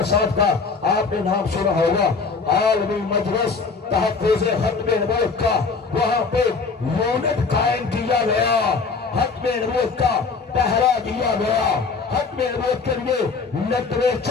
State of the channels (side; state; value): right; quieter; 4.7 dB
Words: صاحب کا آپ نے نام سنا ہوگا, عالمی مجلس تحفظ ختم نبوت کا وہاں پہ یونٹ قائم کیا گیا, ختم نبوت کا پہرا دیا گیا, ختم نبوت کے لیے